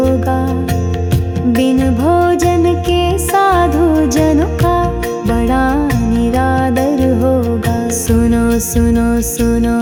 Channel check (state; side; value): identical; both; correlation 1.00